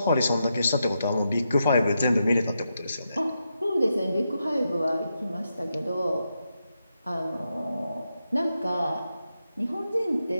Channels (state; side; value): inverted; both; correlation -0.85